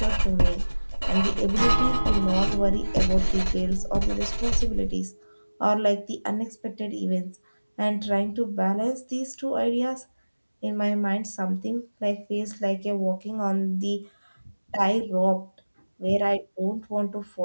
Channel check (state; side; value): inverted; both; correlation -1.00